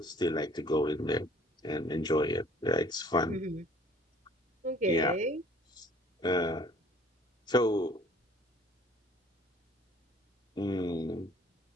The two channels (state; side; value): normal; both; correlation 0.55